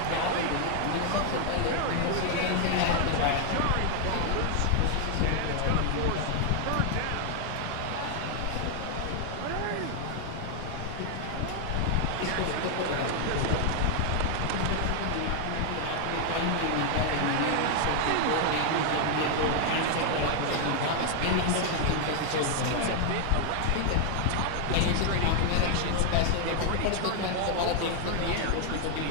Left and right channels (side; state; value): both; different; correlation 0.00